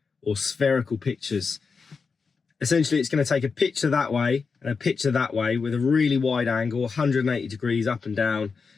or spherical pictures. Essentially, it's going to take a picture that way and a picture that way with a really wide angle, 180 degrees up and down,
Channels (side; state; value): right; quieter; 5.1 dB